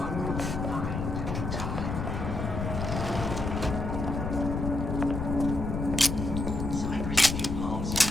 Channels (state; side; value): noise; left; rumble, 3 dB below the sound